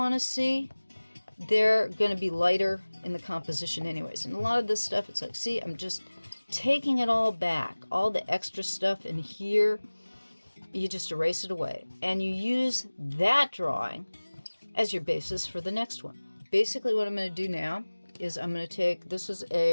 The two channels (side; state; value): both; inverted; correlation -1.00